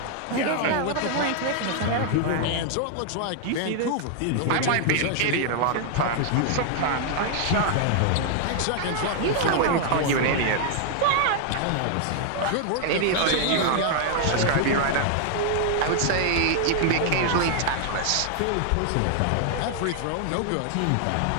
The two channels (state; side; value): different; both; correlation 0.00